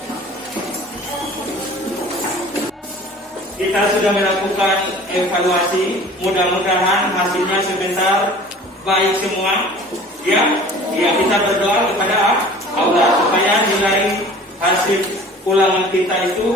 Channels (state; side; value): normal; both; correlation 0.45